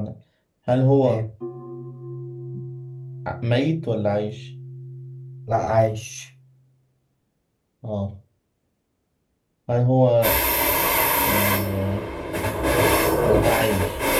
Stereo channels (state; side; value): identical; both; correlation 1.00